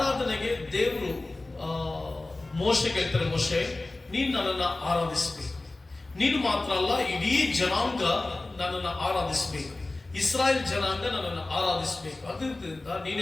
ದೇವರು ಮೋಶೆಗೆ ಹೇಳ್ತಾರೆ, ಮೋಶೆ ನೀನು ನನ್ನನ್ನು ಆರಾಧಿಸಬೇಕು. ನೀನು ಮಾತ್ರ ಅಲ್ಲ, ಇಡೀ ಜನಾಂಗ ನನ್ನನ್ನು ಆರಾಧಿಸಬೇಕು, ಇಸ್ರಾಯೇಲ್ ಜನಾಂಗ ನನ್ನನ್ನು ಆರಾಧಿಸಬೇಕು. ಅದರಿಂದ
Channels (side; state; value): right; quieter; 3.0 dB